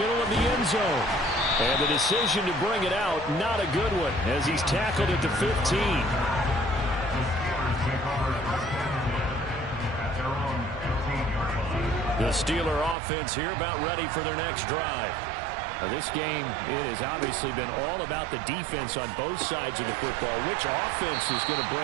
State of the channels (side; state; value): left; drops out; at 13.0 s